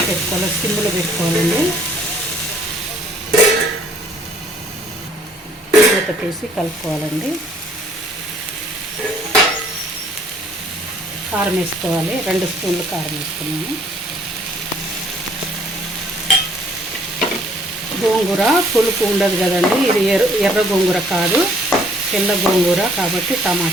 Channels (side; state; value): both; normal; correlation 0.61